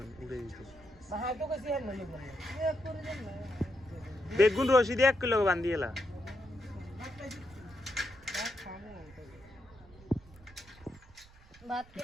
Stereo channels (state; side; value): noise; right; rumble, 23 dB below the sound